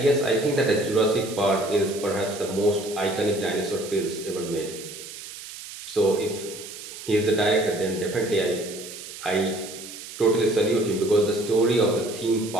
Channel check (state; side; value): noise; right; hiss, 13 dB below the sound